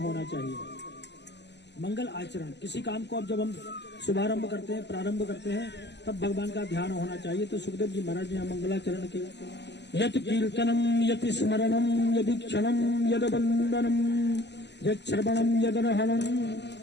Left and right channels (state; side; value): late; right; 0.50 ms